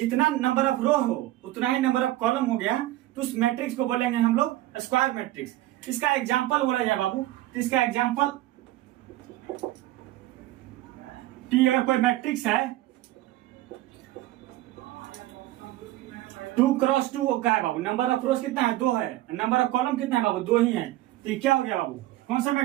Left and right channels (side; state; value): left; quieter; 15.9 dB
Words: नंबर ऑफ रो हो उतना ही नंबर ऑफ कॉलम हो गया, तो उस मैट्रिक्स को बोलेंगे हम लोग स्क्वायर मैट्रिक्स। इसका एग्जांपल बोला जाए बाबू, तो इसका एग्जांपल टी अगर कोई मैट्रिक्स है 2 क्रॉस 2 का है बाबू, नंबर ऑफ रोज कितना है 2 है, नंबर ऑफ कॉलम कितना है बाबू 2 ही है, तो ये क्या हो गया बाबू, कौन सा